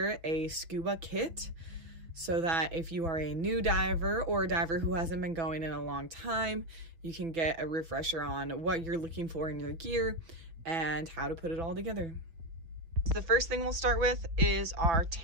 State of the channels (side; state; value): left; late; 6.3 ms